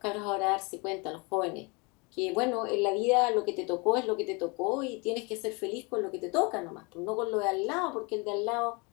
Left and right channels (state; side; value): quieter; right; 29.5 dB